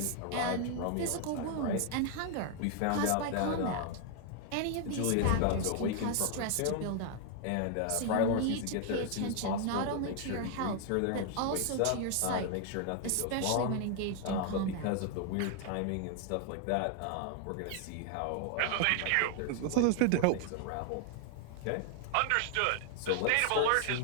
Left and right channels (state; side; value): different; both; correlation 0.00